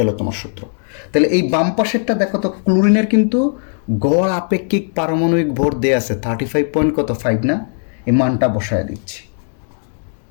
হলো তোমার সূত্র। তাহলে এই বাম পাশেরটা দেখো তো, ক্লোরিনের কিন্তু গড় আপেক্ষিক পারমাণবিক ভর দেয়া আছে 35.5 না, এই মানটা বসায় দিচ্ছি।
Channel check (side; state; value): right; silent; 60 dB below the other